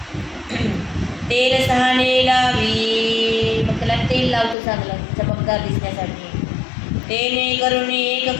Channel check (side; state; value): right; drops out; at 4.5 s